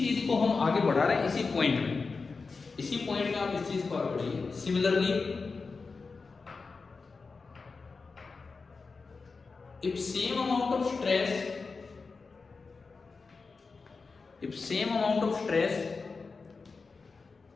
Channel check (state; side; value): quieter; right; 4.4 dB